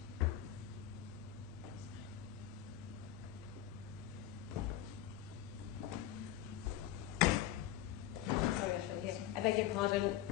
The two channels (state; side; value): quieter; right; 12.4 dB